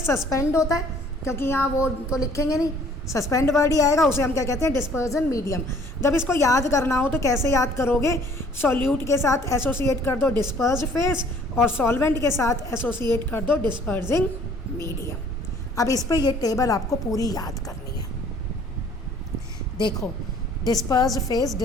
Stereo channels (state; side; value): normal; both; correlation 0.56